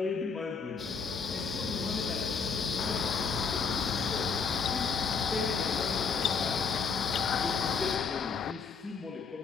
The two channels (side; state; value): right; quieter; 5.4 dB